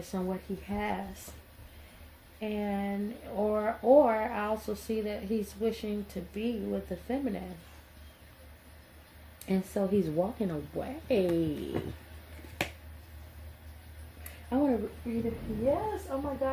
and what he has. And or I also see that he's wishing to be with the feminine, and so he's walking away. I want to read it. Yes, oh my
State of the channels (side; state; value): both; identical; correlation 1.00